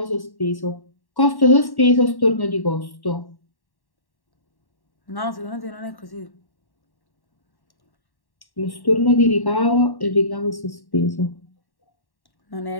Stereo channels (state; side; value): late; right; 1.1 ms